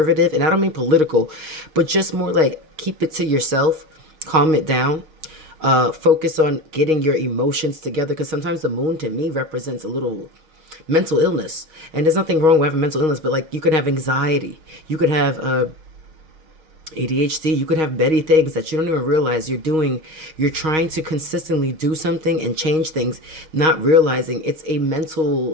and I don't mean political, but just more like keep it to yourself, calm it down, focus on getting your emotions together. Because sometimes the moon to me represents a little mental illness, and there's nothing wrong with having mental illness, but like you could have anxiety, you could have ADHD, you could have many things that you don't even realize you're doing. You're trying to consistently do something and change things, not realizing it's a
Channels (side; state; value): left; late; 6.4 ms